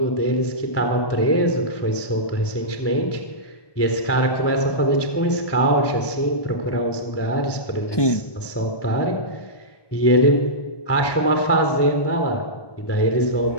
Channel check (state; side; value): late; right; 1.2 ms